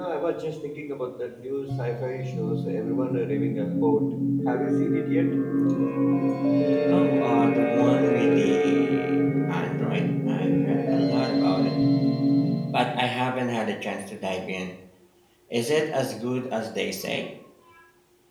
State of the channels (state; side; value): identical; both; correlation 1.00